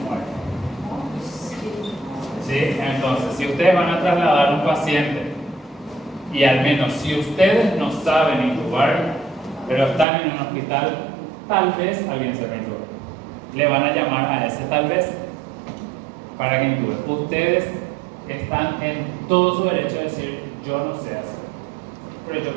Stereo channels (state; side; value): drops out; left; at 10.1 s